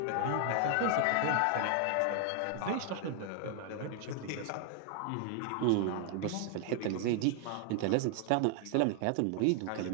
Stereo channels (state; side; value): different; both; correlation 0.00